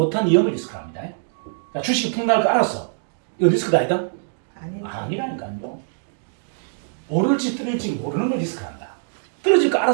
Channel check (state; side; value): silent; left; digital silence